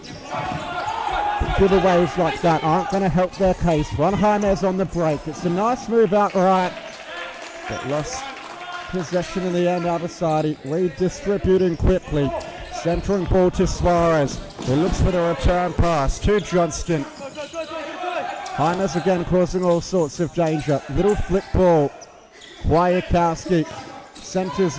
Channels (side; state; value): both; identical; correlation 1.00